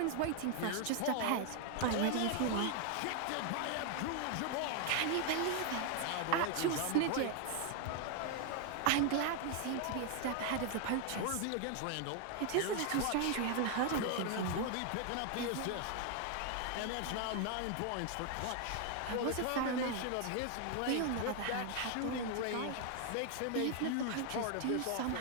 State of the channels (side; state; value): both; different; correlation 0.00